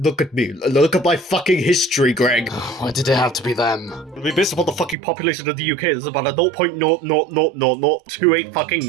at me. Look at my fucking history, Greg. Why did it have to be them? I mean, based upon the fucking population of the UK, there's about a 0.0000028 fucking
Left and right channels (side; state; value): left; drops out; at 5.0 s